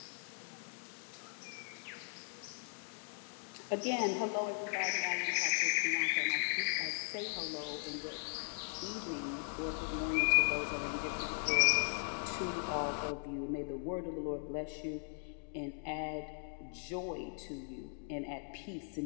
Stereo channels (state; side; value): silent; right; 52 dB below the other